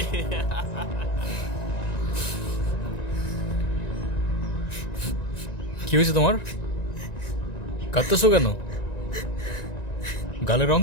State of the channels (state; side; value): late; right; 1.9 ms